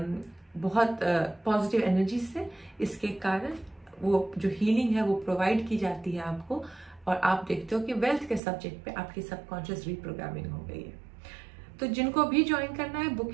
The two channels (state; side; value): drops out; left; at 8.4 s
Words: बहुत पॉजिटिव एनर्जी से। इसके कारण वो जो हीलिंग है वो प्रोवाइड की जाती है आपको, और आप देखते हो कि वेल्थ के सब्जेक्ट पे आपकी सबकॉन्शियस रीप्रोग्रामिंग हो गई है। तो जिनको भी ज्वाइन करना है,